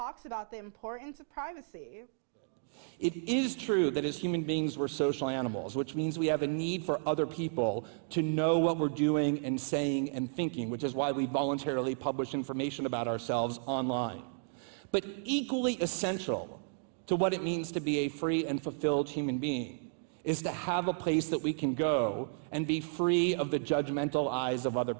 about the importance of privacy. It is true that as human beings we're social animals, which means we have a need for other people to know what we're doing and saying and thinking, which is why we voluntarily publish information about ourselves online. But equally essential to what it means to be a free and fulfilled human being is to have a place that we can go and be free of the judgmental eyes of other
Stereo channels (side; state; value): left; silent; digital silence